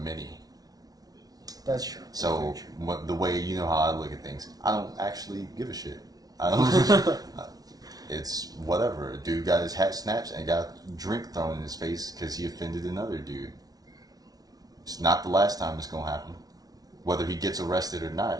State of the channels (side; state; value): left; late; 0.18 ms